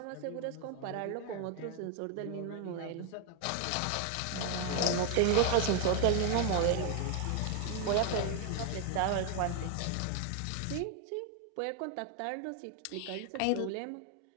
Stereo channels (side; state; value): both; different; correlation 0.00